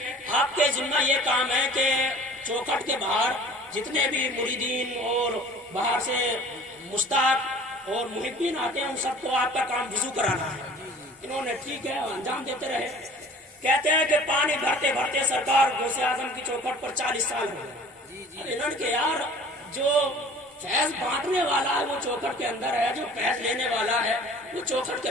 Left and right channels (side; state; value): both; normal; correlation 0.46